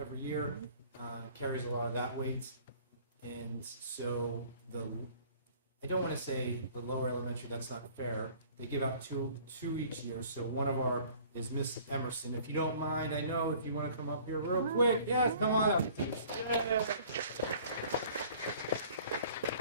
year, carries a lot of that weight. And so I don't want to say the lower elementary, that's not fair. They give out two each year. So one of our is Miss Emerson. If you don't mind, I know if you want to come up here real quick. Yes, come on up.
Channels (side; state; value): both; inverted; correlation -0.52